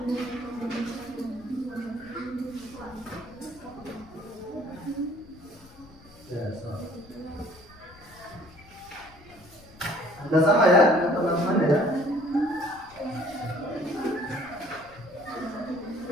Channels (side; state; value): left; noise; rumble, 23 dB below the sound